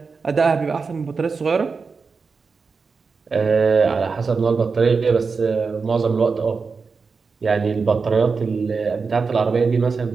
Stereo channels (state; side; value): quieter; left; 4.8 dB